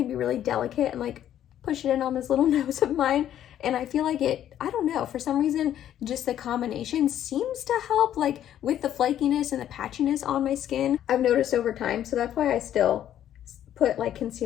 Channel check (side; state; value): right; quieter; 11.0 dB